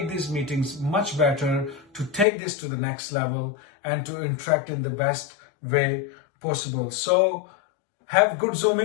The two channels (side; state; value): right; drops out; at 2.2 s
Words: these meetings much better, to take this to the next level and to interact in the best way possible. So have good